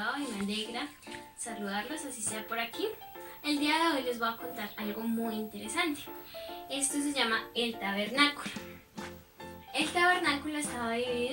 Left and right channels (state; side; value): identical; both; correlation 1.00